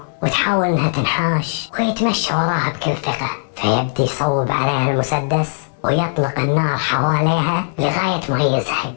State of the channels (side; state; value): right; silent; digital silence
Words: وتحاول انها تنحاش، ويتمشى وراها بكل ثقة. فيبدي يصوب عليها المسدس ويطلق النار حواليها لغاية ما يزهق